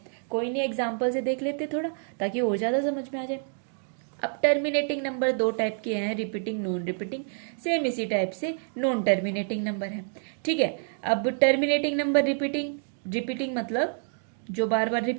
कोई नहीं, एग्जाम्पल से देख लेते थोड़ा ताकि और ज्यादा समझ में आ जाए। अब टर्मिनेटिंग नंबर दो टाइप के हैं, रिपीटिंग, नॉन रिपीटिंग। सेम इसी टाइप से नॉन टर्मिनेटिंग नंबर है। ठीक है, अब टर्मिनेटिंग नंबर रिपीटिंग। रिपीटिंग मतलब जो बार बार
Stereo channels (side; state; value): left; silent; 60 dB below the other